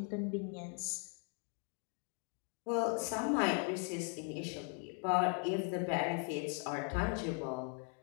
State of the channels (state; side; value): quieter; right; 37.5 dB